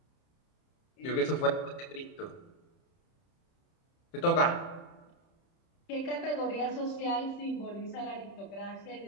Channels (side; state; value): right; late; 30 ms